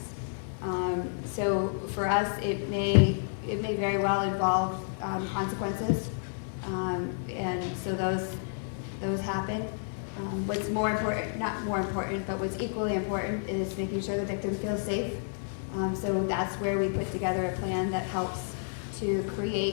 So for us, it may very well involve consequences, and so those happen. What's more important, not more important, but what's equally important is making sure the victim feels safe. So that's where we put together a plan that helps to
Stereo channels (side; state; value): right; silent; digital silence